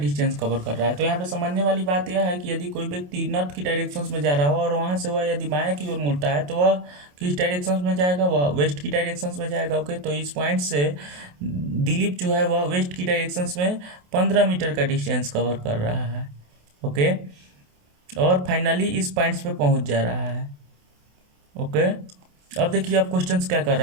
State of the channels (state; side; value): late; left; 28 ms